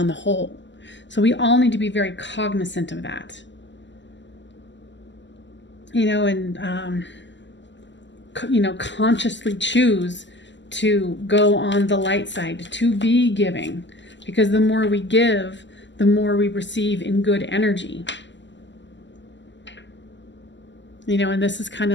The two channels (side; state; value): right; late; 0.53 ms